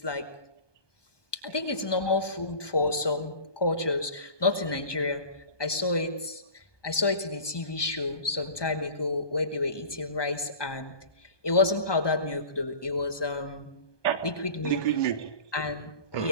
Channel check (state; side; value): late; right; 1.2 ms